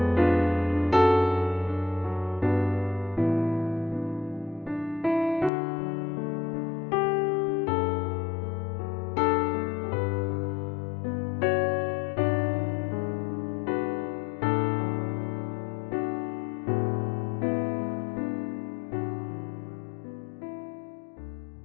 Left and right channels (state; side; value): drops out; right; at 5.5 s